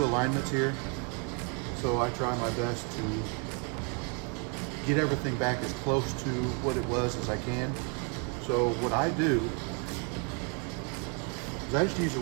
alignments here, so I try my best to get everything back as close to what it was as I can. So what I do is I just use a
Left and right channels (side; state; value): left; quieter; 36.9 dB